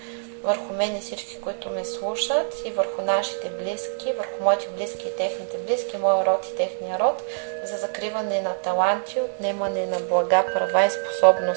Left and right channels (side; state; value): left; silent; digital silence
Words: върху мен и всички, които ме слушат, и върху нашите близки, върху моите близки и техните близки, моя род и техния род, за закриване на таланти, отнемане на блага, права и